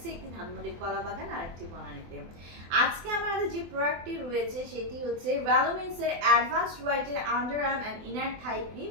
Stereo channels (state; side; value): late; left; 24 ms